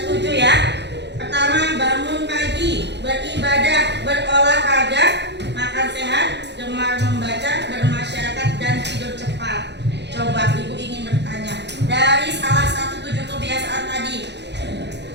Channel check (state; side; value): late; left; 0.50 ms